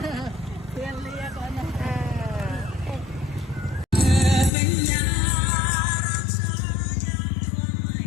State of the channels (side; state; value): right; drops out; at 4.5 s